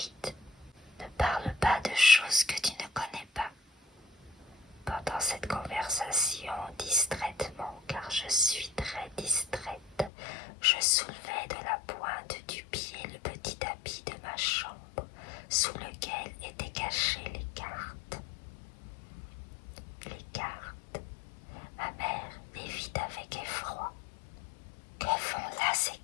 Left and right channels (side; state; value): right; drops out; at 10.1 s